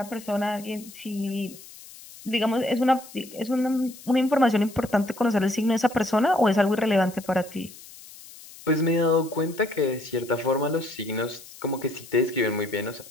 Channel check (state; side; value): noise; left; hiss, 18 dB below the sound